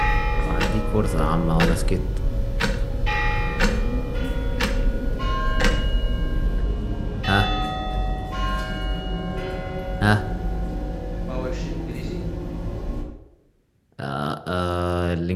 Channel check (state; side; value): identical; both; correlation 1.00